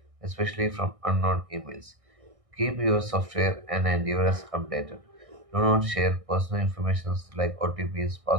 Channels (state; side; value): late; left; 1.6 ms